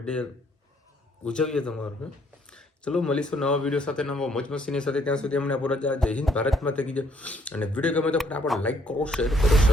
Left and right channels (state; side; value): normal; both; correlation 0.67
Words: ઉજવીએ તમારું. ચલો મળીશું નવા વિડીયો સાથે, નવા મોજ મસ્તીની સાથે. ત્યાં સુધી અમને આપો રજા. જય હિન્દ, ભારત માતા કી જય. અને વિડીયો ગમે તો ફટાફટ લાઈક કરો, શેર કરો,